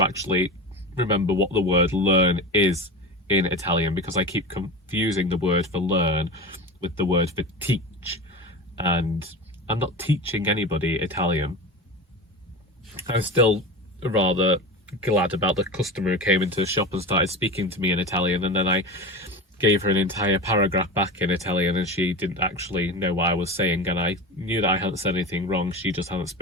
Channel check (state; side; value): normal; both; correlation 0.28